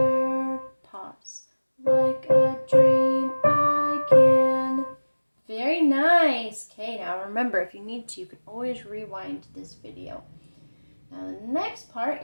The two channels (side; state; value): both; inverted; correlation -1.00